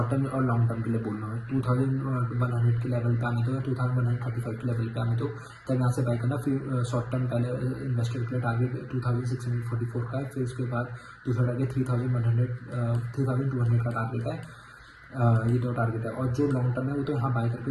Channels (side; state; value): both; identical; correlation 1.00